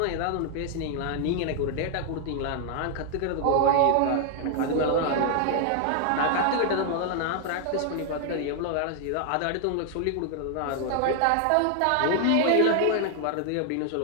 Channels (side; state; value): both; different; correlation 0.00